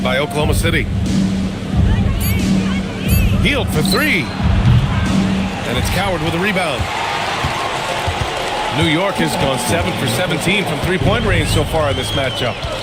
by Oklahoma City. Healed for 3. And it's Coward with a rebound. New York has gone 7 for 17 from three-point range so far in this matchup.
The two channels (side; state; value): both; identical; correlation 1.00